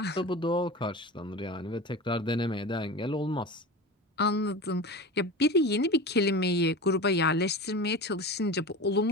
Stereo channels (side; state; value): both; normal; correlation 0.30